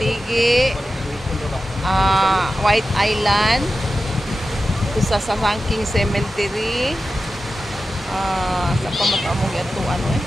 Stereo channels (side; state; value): both; normal; correlation 0.93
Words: White Island. Sa Sangking Cemetery. Sa pamataamong atuan